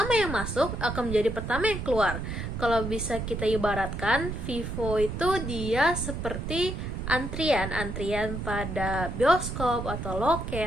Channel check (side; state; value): right; noise; rumble, 5 dB below the sound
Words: yang masuk akan menjadi pertama yang keluar. Kalau bisa kita ibaratkan, FIFO itu dia seperti antrian pada bioskop atau